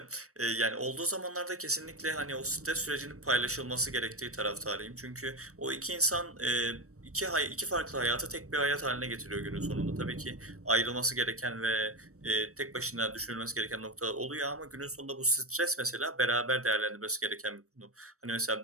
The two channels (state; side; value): late; left; 0.65 ms